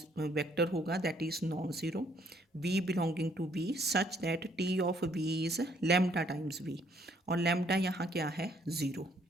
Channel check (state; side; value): normal; both; correlation 0.67